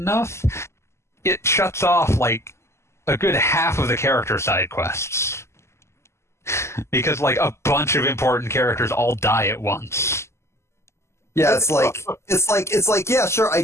it shuts off, like, a good half of the character side quests. Because, like, a bunch of important characters all die at once. Yeah, it's like, yeah, sure, I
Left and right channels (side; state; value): right; late; 0.13 ms